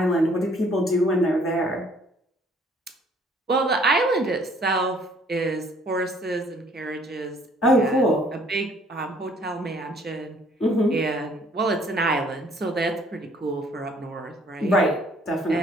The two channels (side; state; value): both; normal; correlation 0.60